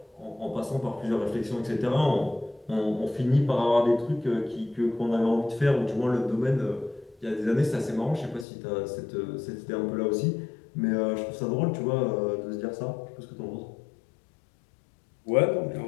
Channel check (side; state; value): right; drops out; at 8.5 s